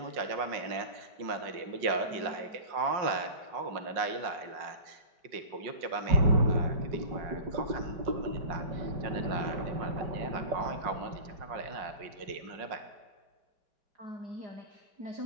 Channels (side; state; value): left; late; 5.5 ms